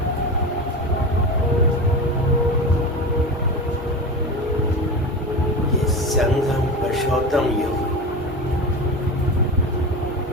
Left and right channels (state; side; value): normal; both; correlation 0.26